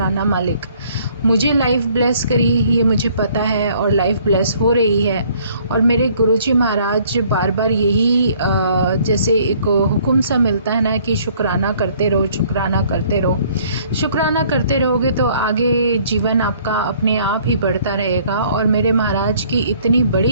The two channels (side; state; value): both; inverted; correlation -0.60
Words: मालिक। मुझे लाइफ ब्लेस करी, ये मुझे पता है और लाइफ ब्लेस हो रही है। और मेरे गुरुजी महाराज बार बार यही जैसे एक हुक्म सा मिलता है ना कि शुक्राना करते रहो, शुक्राना करते रहो। शुक्राना करते रहोगे तो आगे जीवन आपका अपने आप ही बढ़ता रहेगा। और मेरे महाराज की इतनी